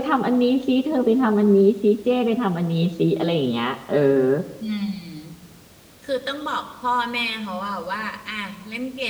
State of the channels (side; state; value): both; identical; correlation 1.00